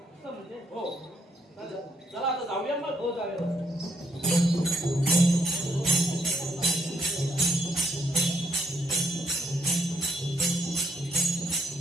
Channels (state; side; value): normal; both; correlation 0.72